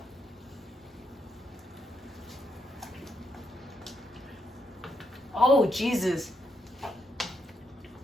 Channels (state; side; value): normal; both; correlation 0.79